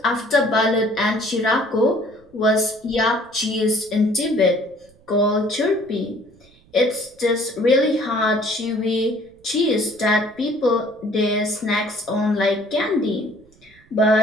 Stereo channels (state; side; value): noise; right; rumble, 29 dB below the sound